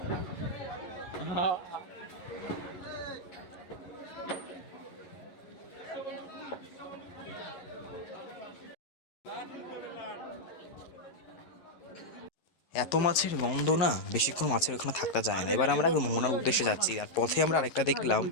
এত মাছের গন্ধ না, বেশিক্ষণ মাছের ওখানে থাকতে যায় না। এবার আমরা মোহনার উদ্দেশ্যে যাচ্ছি, আর পথে আমরা আরেকটা দেখলাম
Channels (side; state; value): right; late; 11 ms